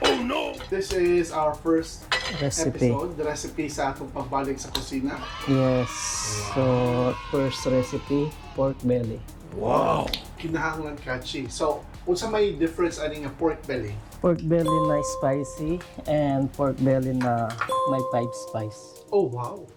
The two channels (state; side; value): identical; both; correlation 1.00